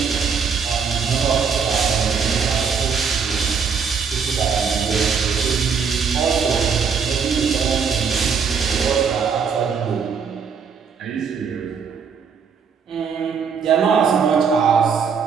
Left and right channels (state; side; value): quieter; left; 6.2 dB